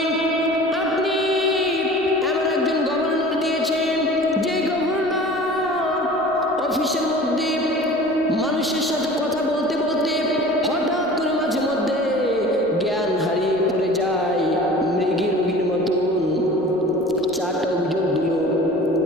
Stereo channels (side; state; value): right; noise; rumble, 25 dB below the sound